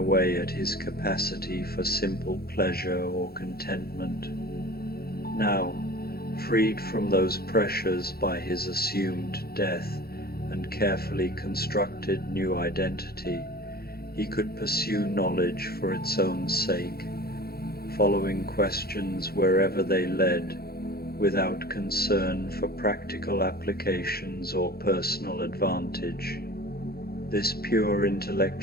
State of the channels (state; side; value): late; right; 0.45 ms